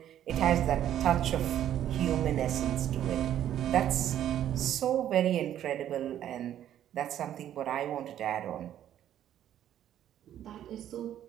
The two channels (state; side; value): quieter; left; 11.1 dB